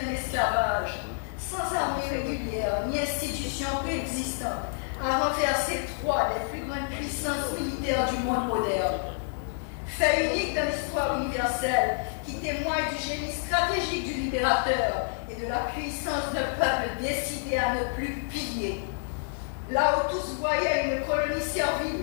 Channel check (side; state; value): right; silent; digital silence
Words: en esclavage, sans armée régulière ni institutions préexistantes, a renversé trois des plus grandes puissances militaires du monde moderne. Fait unique dans l'histoire universelle qui témoigne du génie stratégique du libérateur et de la puissance d'un peuple décidé à ne plus plier. Là où tous voyaient une colonie